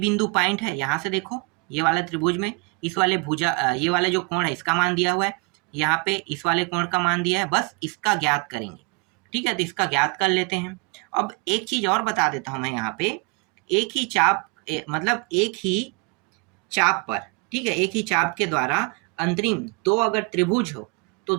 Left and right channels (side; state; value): left; quieter; 30.5 dB